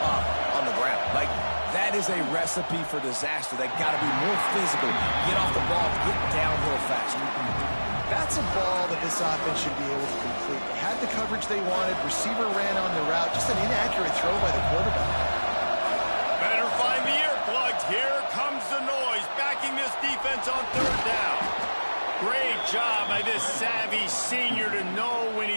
on the ground. Like, that is a recipe for disaster. They got to be more physical, get off the ball, get downhill faster. That's a ball that this offense should be able to complete. They had the coverage they wanted. Receiver ran on the route. Just an inaccurate throw by the quarterback. Better find the earplugs. Here comes the noise, backing this defense on third down. Great job by this savvy senior to know when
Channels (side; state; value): both; inverted; correlation -1.00